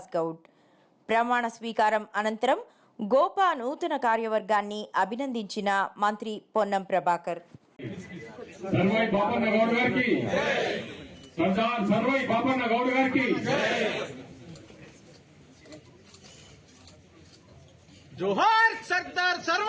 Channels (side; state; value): both; identical; correlation 1.00